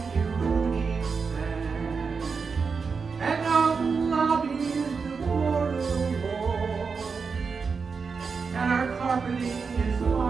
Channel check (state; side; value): quieter; left; 5.2 dB